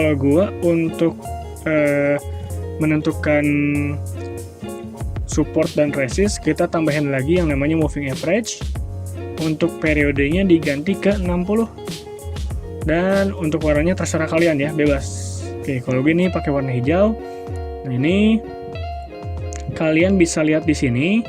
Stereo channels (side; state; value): both; identical; correlation 1.00